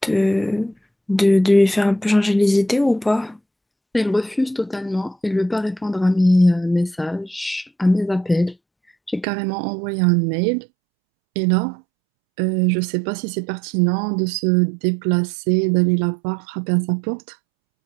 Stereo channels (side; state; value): left; drops out; at 9.2 s